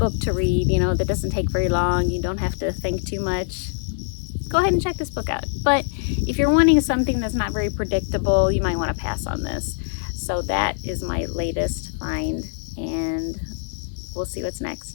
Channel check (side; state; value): right; silent; digital silence